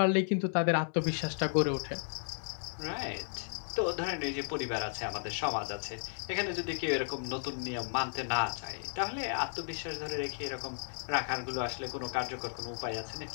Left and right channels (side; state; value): right; silent; 55 dB below the other